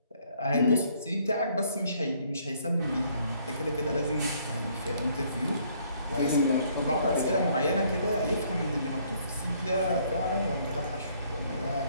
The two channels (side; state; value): both; inverted; correlation -0.65